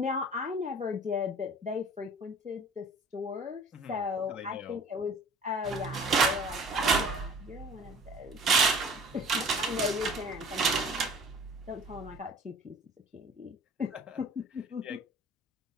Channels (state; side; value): normal; both; correlation 0.47